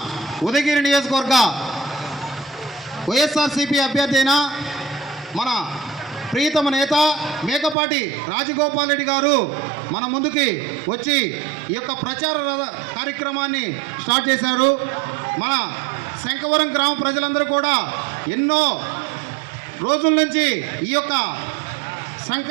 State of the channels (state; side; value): drops out; left; at 7.8 s